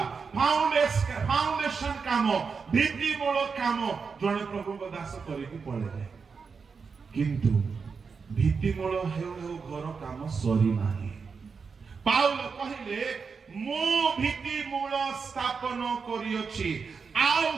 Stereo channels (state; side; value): quieter; left; 5.4 dB